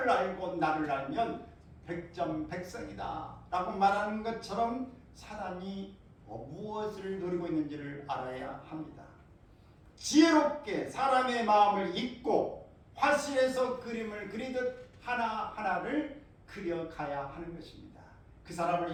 알고 나를 알면 백전백승이다 라고 말하는 것처럼 사단이 무엇을 노리고 있는지를 알아야 합니다. 지혜롭게 사람의 마음을 읽고 화실에서 그림을 그리듯 하나하나를 그려가야 하는 것입니다. 그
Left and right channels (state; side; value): identical; both; correlation 1.00